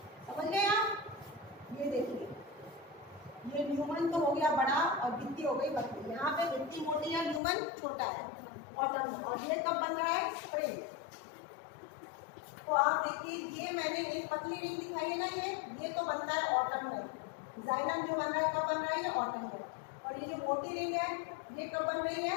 समझ गए आप, ये देखिए, ये ल्यूमन तो हो गया बड़ा और भित्ति हो गई पतली। यहाँ पे भित्ति मोटी है, ल्यूमन छोटा है ऑटम में। और ये कब बन रहा है, स्प्रिंग। तो आप देखिए, ये मैंने एक पतली रिंग दिखाई है ना, ये तो बनता है ऑटम में। जाइलम जो बन रहा है कब बन रहा है, ये ऑटम में। और ये जो मोटी रिंग है ये कब बन रही है,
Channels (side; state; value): right; drops out; at 7.4 s